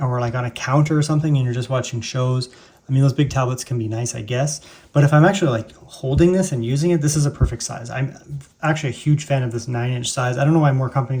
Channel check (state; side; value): identical; both; correlation 1.00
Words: like on a counter or something and you're just watching shows, I mean, those big tablets can be nice, I guess. But if I'm actually like holding this and using it, this is a perfect size. I'm actually a huge fan of this 9-inch size. I don't know why more